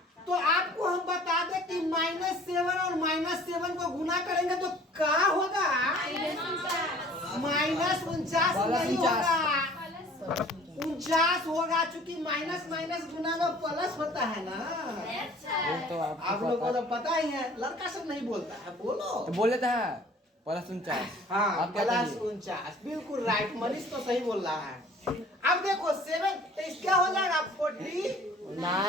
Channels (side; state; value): both; normal; correlation 0.51